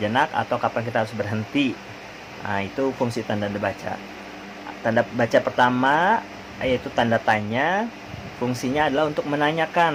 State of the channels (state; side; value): identical; both; correlation 1.00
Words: atau kapan kita harus berhenti. Nah, itu fungsi tanda baca. Tanda baca pertama yaitu tanda tanya, fungsinya adalah untuk